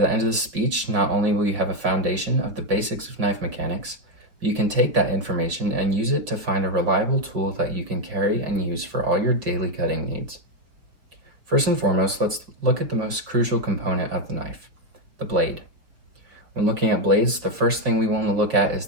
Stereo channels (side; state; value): left; late; 5.0 ms